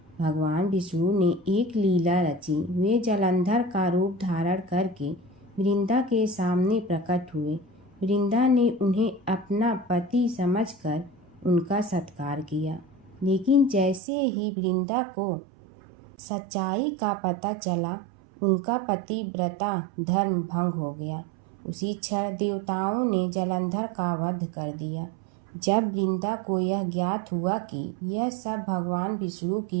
भगवान विष्णु ने एक लीला रची। वे जलंधर का रूप धारण करके वृंदा के सामने प्रकट हुए। वृंदा ने उन्हें अपना पति समझकर उनका सत्कार किया, लेकिन जैसे ही वृंदा को सच्चाई का पता चला, उनका पतिव्रता धर्म भंग हो गया। उसी क्षण देवताओं ने जलंधर का वध कर दिया। जब वृंदा को यह ज्ञात हुआ कि यह सब भगवान विष्णु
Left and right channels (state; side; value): drops out; left; at 14.0 s